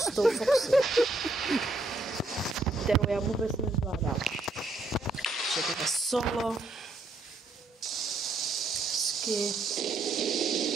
tou Foxy, kterou já vůbec nezvládám. Je to solo.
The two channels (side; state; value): left; quieter; 3.0 dB